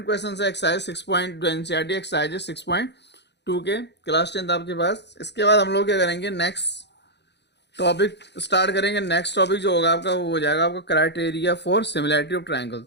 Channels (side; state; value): right; late; 0.50 ms